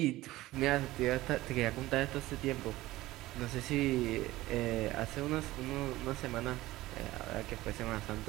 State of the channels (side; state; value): left; quieter; 17.5 dB